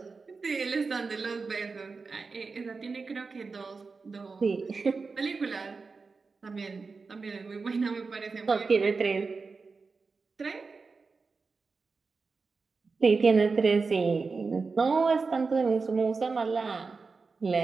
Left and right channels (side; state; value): left; quieter; 4.4 dB